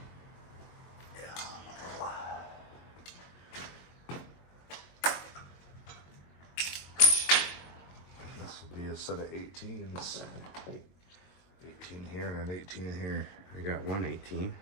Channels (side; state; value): right; late; 22 ms